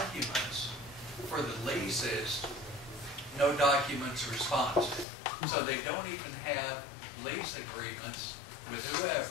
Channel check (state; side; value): drops out; right; at 5.1 s